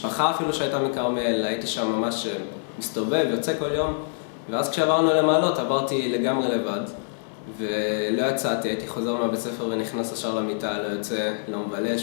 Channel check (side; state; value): right; silent; digital silence